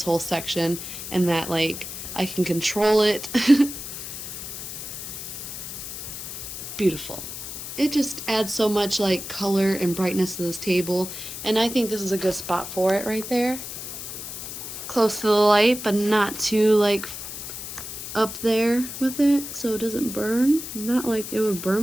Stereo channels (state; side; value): noise; left; hiss, 8 dB below the sound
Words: whole section and that like I can control it. Beautiful. It just adds so much like color and brightness to this table, and I think this is a good spot for it right there. Close to the light, but not too like up there with it so it doesn't burn. Not like it would